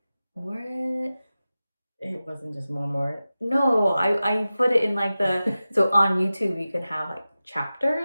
It wasn't just more. No, I put it in like so on YouTube you can have like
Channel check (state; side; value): inverted; both; correlation -0.95